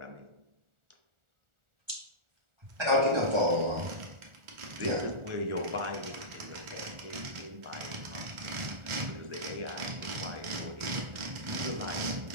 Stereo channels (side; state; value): left; late; 1.4 ms